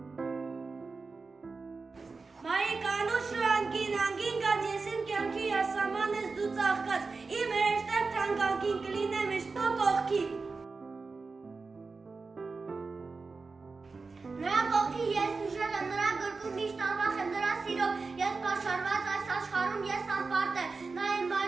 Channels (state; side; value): quieter; left; 4.2 dB